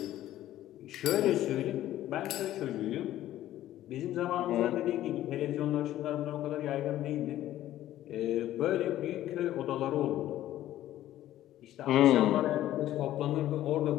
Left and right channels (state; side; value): quieter; right; 13.5 dB